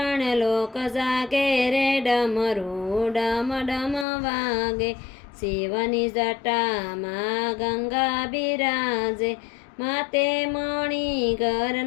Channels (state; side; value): drops out; right; at 4.0 s